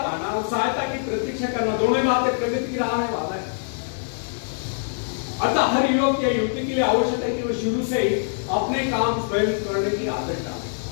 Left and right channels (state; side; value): silent; right; digital silence